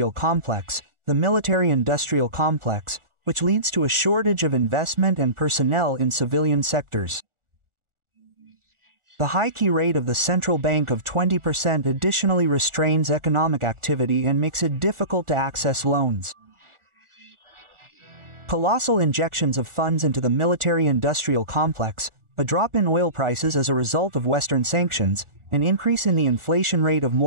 complex, which leads to a shortage of investment and personnel in civilian sectors. The high key rate of the central bank of 20% additionally restrains economic activity and makes it difficult to access loans. Colossal injections of funds into the military-industrial complex, a drop in oil prices as a result of Western sanctions, an increase in the inflation rate of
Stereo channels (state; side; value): late; left; 1.4 ms